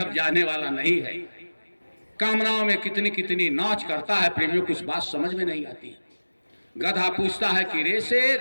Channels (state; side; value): inverted; both; correlation -1.00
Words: जाने वाला नहीं है। कामनाओं में कितनी कितनी नाच करता है प्रेमियों, कुछ बात समझ में नहीं आती। गधा पूछता है कि रे